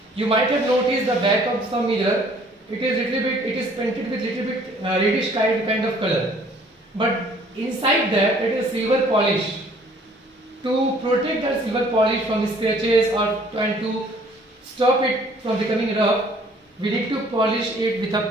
You might have noticed the back of some mirror. It is painted with little bit reddish kind of color, but inside that it is silver polish. To protect the silver polish from scratches and to stop it from becoming rough, we need to polish it with a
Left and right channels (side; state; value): both; normal; correlation 0.57